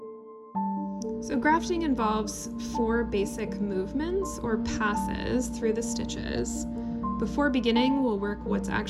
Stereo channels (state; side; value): identical; both; correlation 1.00